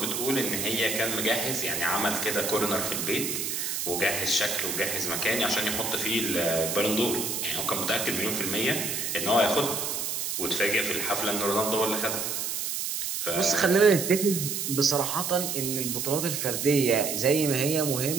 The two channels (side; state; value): right; noise; hiss, 2 dB below the sound